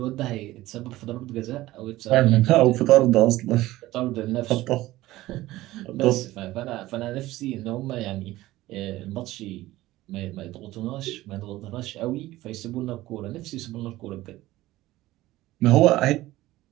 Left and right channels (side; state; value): left; quieter; 16.9 dB